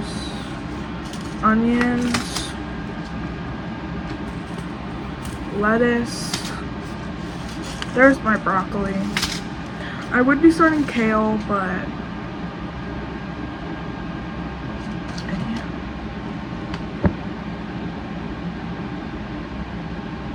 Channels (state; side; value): identical; both; correlation 1.00